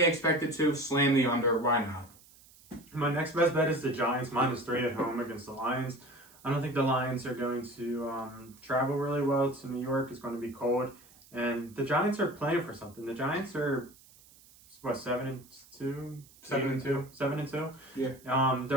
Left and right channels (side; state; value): right; noise; hiss, 25 dB below the sound